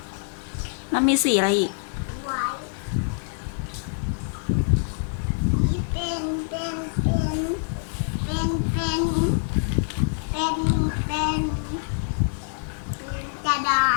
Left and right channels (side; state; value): right; silent; digital silence